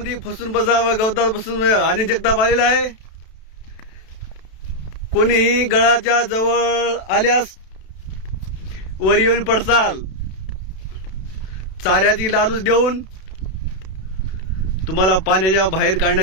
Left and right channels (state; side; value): late; right; 32 ms